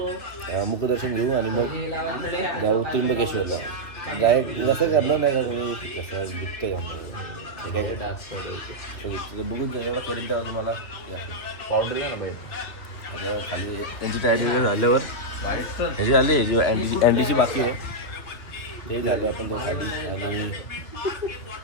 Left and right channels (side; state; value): right; late; 2.7 ms